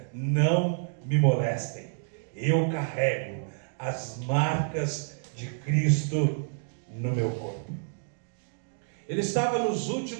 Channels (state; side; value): silent; left; digital silence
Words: não me molestem, eu carrego as marcas de Cristo no meu corpo. Ele estava nos